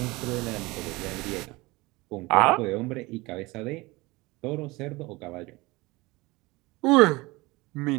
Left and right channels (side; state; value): left; quieter; 22.5 dB